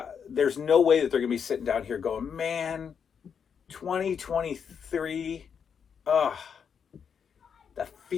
There's no way that they're going to be sitting down here going, man, 2023, that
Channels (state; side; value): quieter; right; 7.1 dB